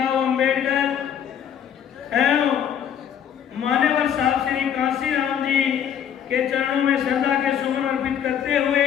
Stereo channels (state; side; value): quieter; right; 8.9 dB